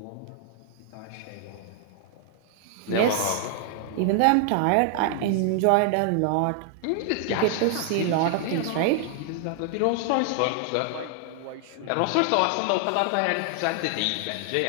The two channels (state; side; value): different; both; correlation 0.00